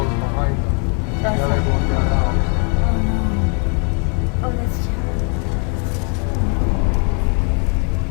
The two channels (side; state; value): right; quieter; 37.1 dB